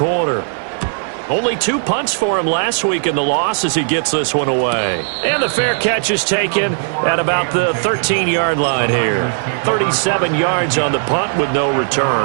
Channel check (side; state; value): left; silent; 57 dB below the other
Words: Only 2 punts for him last week in the loss as he gets this one away. And the fair catch is taken at about the 13-yard line here. 37 yards on the punt with no